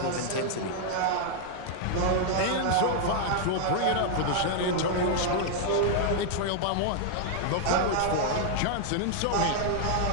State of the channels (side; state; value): both; different; correlation 0.00